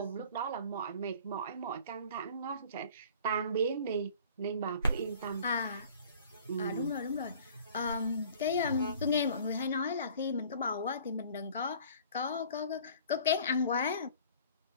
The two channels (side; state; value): both; inverted; correlation -0.49